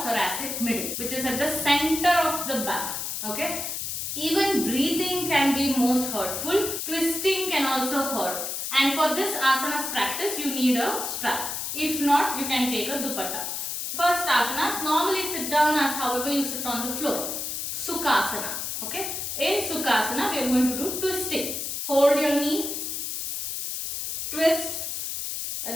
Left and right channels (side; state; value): left; noise; hiss, 4 dB below the sound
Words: thoracic middle, which is at the center of the back. Okay. Even breathing can be most hurtful. Twisting can also hurt. And for this asanas practice, you need a strap. If not, you can take a dupatta. First asanas, normally sit down as however you sit on the floor. Sukhasana. Okay. In Sukhasana, we are going to do twisting. Hold your knee. Twist.